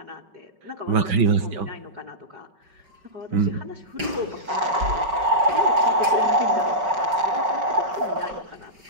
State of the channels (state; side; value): late; left; 5.3 ms